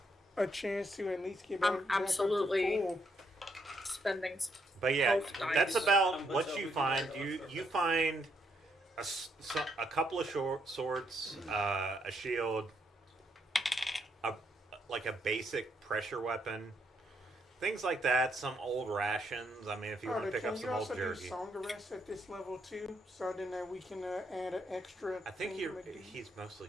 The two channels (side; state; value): both; normal; correlation 0.75